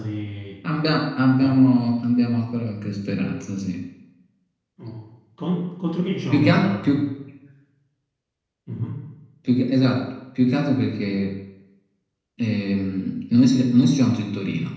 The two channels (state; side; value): identical; both; correlation 1.00